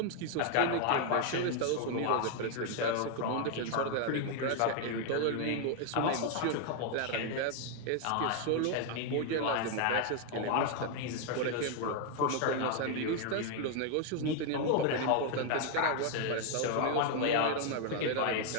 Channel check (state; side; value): different; both; correlation 0.00